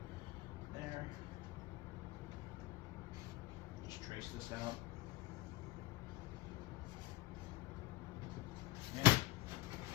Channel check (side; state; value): right; quieter; 19.1 dB